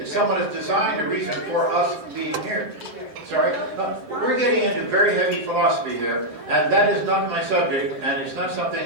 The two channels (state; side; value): late; left; 7.8 ms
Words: someone has designed a reason for us being here. Sorry? We're getting into very heavy philosophy here, and that is not my subject, and it's not